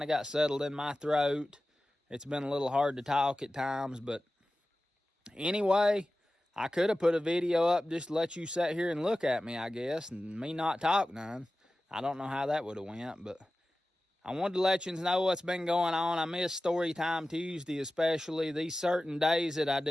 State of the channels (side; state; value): both; normal; correlation 0.95